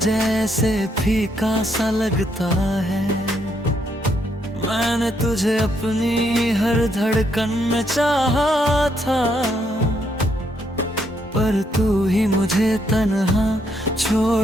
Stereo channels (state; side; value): normal; both; correlation 0.74